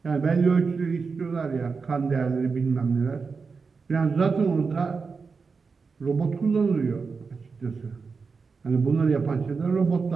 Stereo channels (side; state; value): left; quieter; 4.9 dB